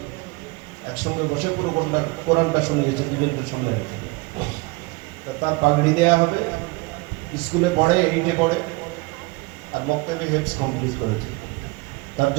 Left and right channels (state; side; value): quieter; left; 25.3 dB